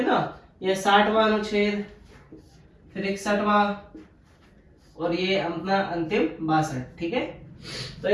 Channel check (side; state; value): both; identical; correlation 1.00